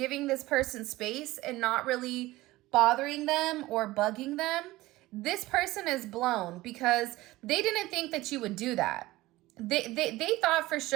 this person space and not really bothering them or bugging them, this person is blown, because they didn't think that you would do that. They thought for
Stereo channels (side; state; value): left; quieter; 18.4 dB